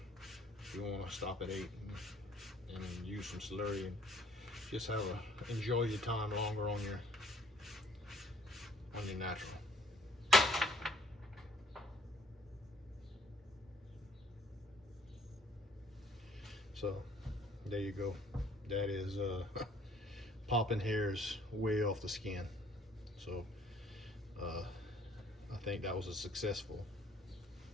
if you want to stop at 8 and use some slurry and just have enjoy your time longer on your natural. So there you go. That is popping hairs way off the skin. So I think that was a successful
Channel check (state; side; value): normal; both; correlation 0.60